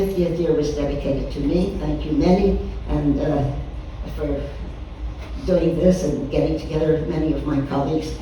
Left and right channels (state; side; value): identical; both; correlation 1.00